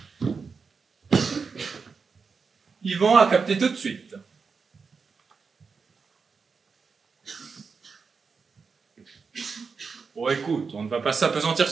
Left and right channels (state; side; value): quieter; left; 5.2 dB